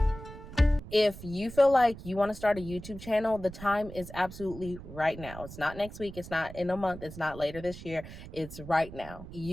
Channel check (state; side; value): noise; right; rumble, 14 dB below the sound